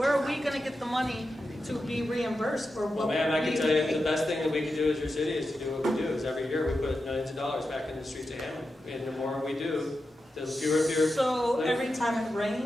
are we going to get the money to be reimbursed for what? Well, ma'am, I can tell you the best thing that we can do as your city is to do what we do. Is every year we put millions of dollars back in the streets of Hammond, and the more we do, the fewer. So every time it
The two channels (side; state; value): both; normal; correlation 0.90